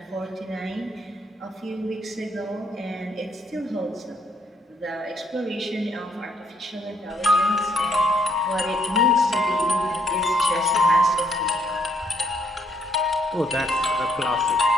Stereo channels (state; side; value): normal; both; correlation 0.70